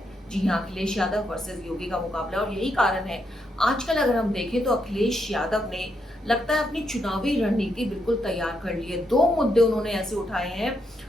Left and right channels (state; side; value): normal; both; correlation 0.79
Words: जी हाँ, अखिलेश यादव वर्सेस योगी का मुकाबला। और यही कारण है आजकल अगर हम देखें तो अखिलेश यादव ने लगता है अपनी चुनावी रणनीति बिल्कुल तैयार कर ली है। 2 मुद्दे उन्होंने ऐसे उठाए हैं